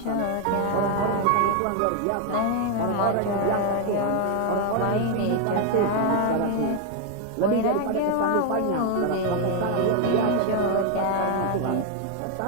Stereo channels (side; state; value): both; different; correlation 0.01